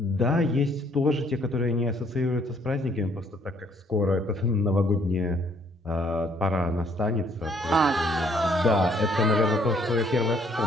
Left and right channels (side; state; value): both; normal; correlation 0.64